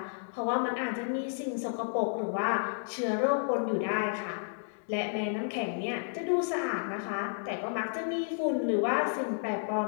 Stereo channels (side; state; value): right; silent; digital silence